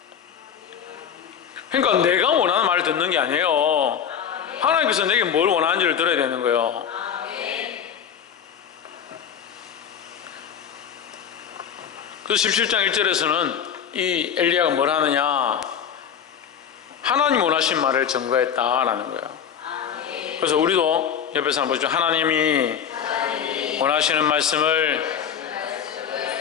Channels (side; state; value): right; quieter; 8.2 dB